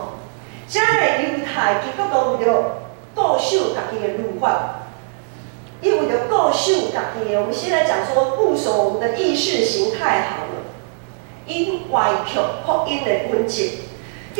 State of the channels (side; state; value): left; silent; 66 dB below the other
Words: 遮个犹太基督徒为了固守家己的律法，伊为了固守家己的，我们现在讲说固守我们的意识形态好了，因歪曲福音的本质，